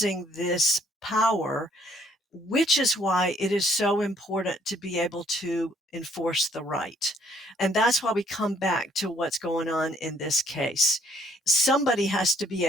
this power, which is why it is so important to be able to enforce the right. And that's why we come back to what's going on in this case. Somebody has to be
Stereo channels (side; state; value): both; normal; correlation 0.65